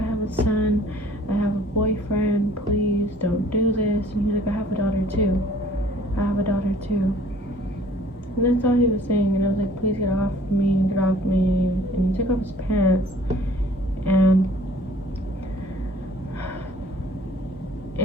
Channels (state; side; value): normal; both; correlation 0.54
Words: have a son. I have a boyfriend. Please don't do this." And he's like, "I have a daughter too. I have a daughter too." And that's all he was saying. And I was like, "Please get off me, get off me." And he took off his pants, and